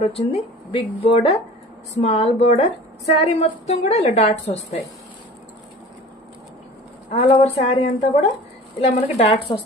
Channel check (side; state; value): both; normal; correlation 0.41